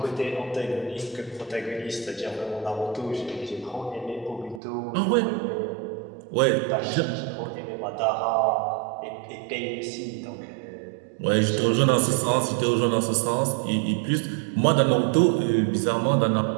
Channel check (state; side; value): drops out; left; at 4.6 s